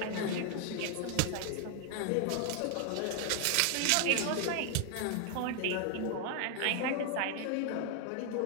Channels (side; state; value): both; different; correlation 0.00